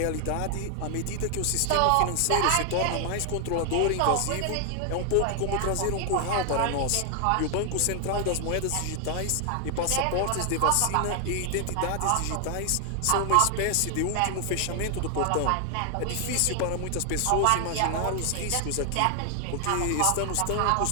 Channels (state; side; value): different; both; correlation 0.00